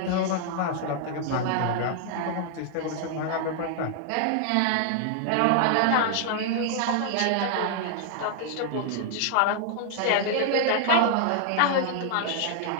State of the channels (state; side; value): different; both; correlation 0.00